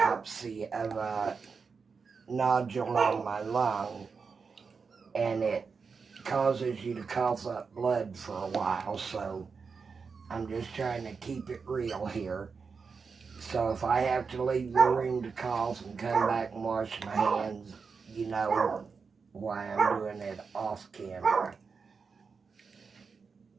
of a nodule on my lung, and it causes you to cough up blood for a while. So I'm just trying to keep it real here. So if I have to leave the room to cough and come back and wash my hands, you know why I'm doing it off camera.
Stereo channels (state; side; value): quieter; left; 5.2 dB